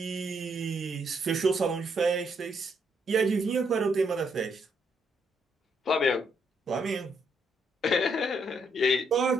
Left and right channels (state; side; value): normal; both; correlation 0.74